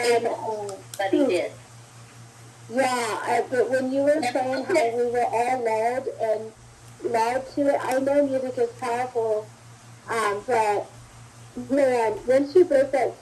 Everybody did. yeah, but when you were saying how we were all loud to it, I know music is powerful, but man, once you broke that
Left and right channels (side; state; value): both; identical; correlation 1.00